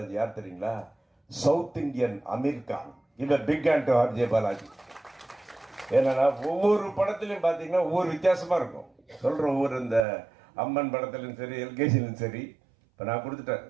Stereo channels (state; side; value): drops out; left; at 10.1 s